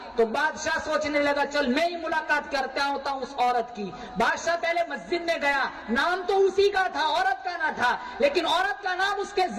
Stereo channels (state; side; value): identical; both; correlation 1.00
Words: تو بادشاہ سوچنے لگا چل میں ہی ملاقات کرتا ہوں اس عورت کی۔ بادشاہ پہلے مسجد میں گیا، نام تو اسی کا تھا، عورت کا نہ تھا، لیکن عورت کا نام اس کے